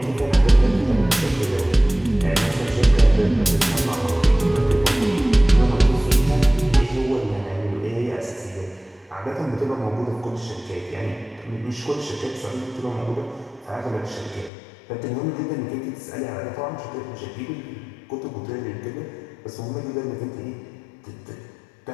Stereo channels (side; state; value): right; drops out; at 14.5 s